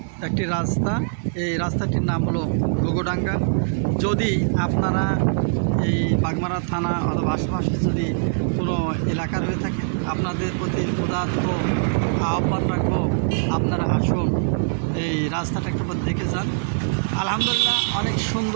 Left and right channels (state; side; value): silent; left; digital silence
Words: একটি রাস্তা। এই রাস্তাটির নাম হলো ঘুঘুডাঙ্গা। যদি আপনারা এই বাগমারা থানা অথবা আশেপাশে যদি কোনো এলাকার হয়ে থাকে, আপনাদের প্রতি উদাত্ত আহ্বান রাখবো, আপনারা আসুন, এই রাস্তাটা একবার দেখে যান। আলহামদুলিল্লাহ, অনেক